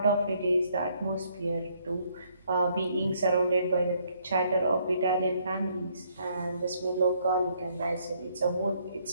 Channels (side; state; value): both; inverted; correlation -0.68